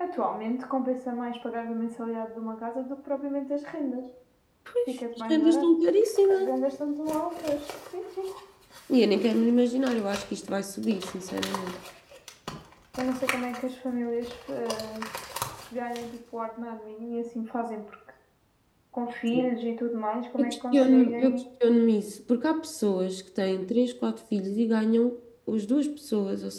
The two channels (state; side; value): identical; both; correlation 1.00